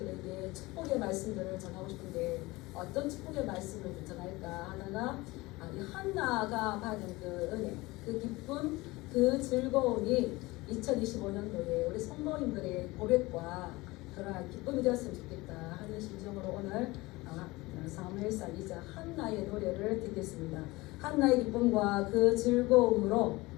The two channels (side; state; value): right; quieter; 21.4 dB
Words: 축복의 말씀들을 전하고 싶은데 어떤 축복의 말씀을 전할까 하다가 이 한나가 받은 그 은혜, 그 기쁨, 그 즐거움이 2025년도에 우리 성도님들의 고백과 그러한 기쁨이 되었으면 좋겠다 하는 심정으로 오늘 사무엘상 2장 한나의 노래를 듣겠습니다. 한나의 기쁨과 그 즐거움으로